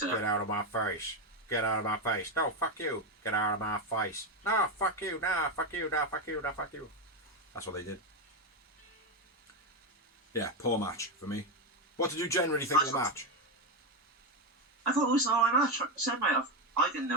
up. Get out of my face. Get out of my face. No, fuck you. Get out of my face. No, fuck you. No, fuck you. No, fuck you. No, fuck you. That's what they did. Yeah, poor match for me. What did you generally think of the match? I thought it was an alright match. I didn't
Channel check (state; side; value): normal; both; correlation 0.10